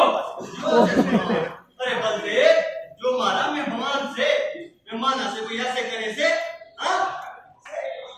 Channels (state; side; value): identical; both; correlation 1.00